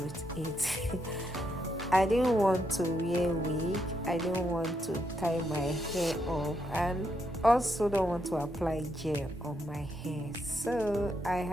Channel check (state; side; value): normal; both; correlation 0.79